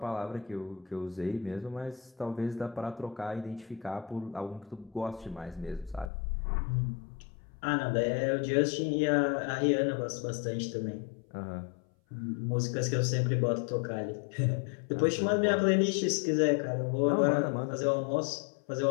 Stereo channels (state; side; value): drops out; right; at 6.1 s